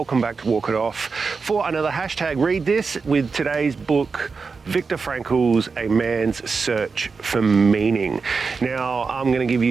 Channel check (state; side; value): quieter; left; 4.8 dB